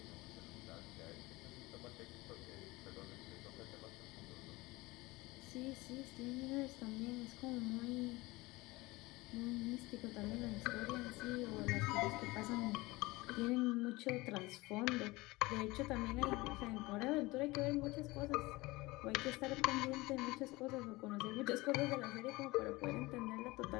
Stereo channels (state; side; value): quieter; right; 21.6 dB